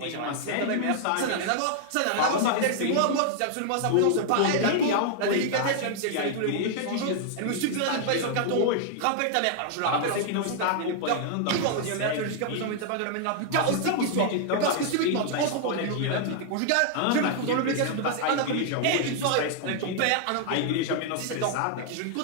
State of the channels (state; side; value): different; both; correlation 0.00